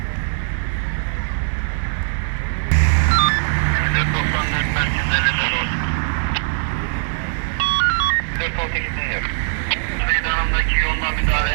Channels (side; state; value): left; silent; digital silence